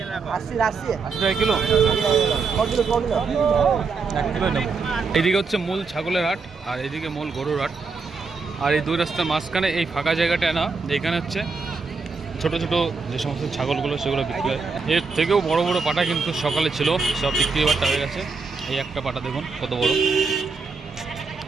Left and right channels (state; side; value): quieter; left; 4.6 dB